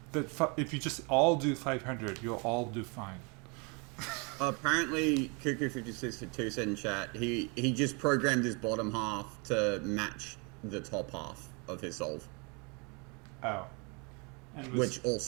that if you just all do 500, you'll all do fine. Apparently, Cuckoo56 said in chat, he just programmed his bottom half to match the top half of his solve. Oh. Which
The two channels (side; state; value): left; quieter; 32.1 dB